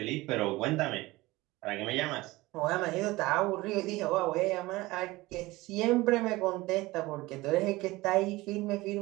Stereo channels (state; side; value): quieter; left; 20.1 dB